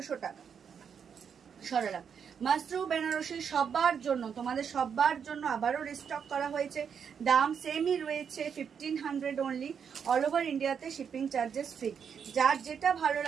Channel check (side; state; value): left; quieter; 7.2 dB